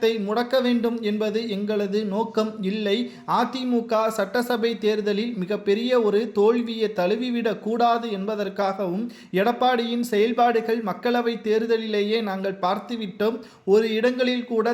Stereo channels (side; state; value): both; identical; correlation 1.00